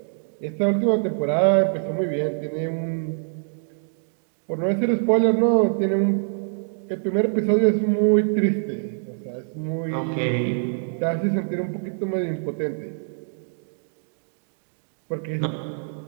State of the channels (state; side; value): silent; left; digital silence